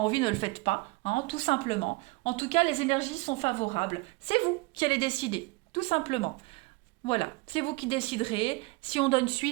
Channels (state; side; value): quieter; left; 24.2 dB